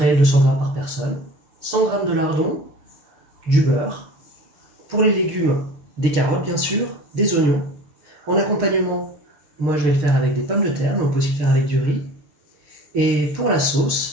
200 grammes par personne, 100 grammes de lardon, du beurre. Pour les légumes, des carottes bien sûr, des oignons. En accompagnement, moi je vais le faire avec des pommes de terre, mais on peut aussi le faire avec du riz. Et pour la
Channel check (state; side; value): late; left; 6.6 ms